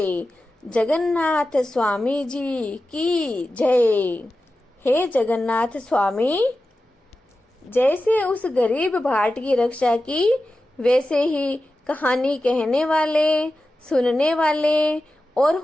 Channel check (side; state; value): both; normal; correlation 0.93